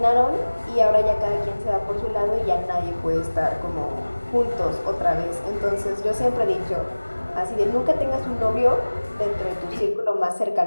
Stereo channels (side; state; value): both; inverted; correlation -1.00